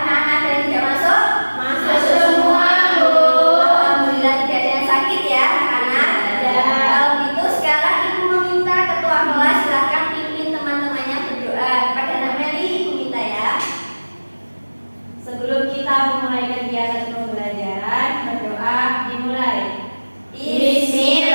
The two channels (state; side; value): inverted; both; correlation -1.00